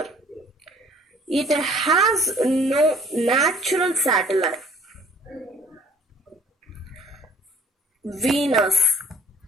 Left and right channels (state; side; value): normal; both; correlation 0.54